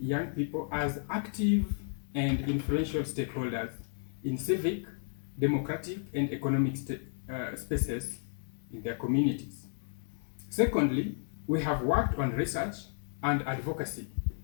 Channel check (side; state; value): right; silent; 56 dB below the other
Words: young people as active and influential stakeholders in civic, democratic, and economic spaces in their communities. Secondly, we have worked on research and advocacy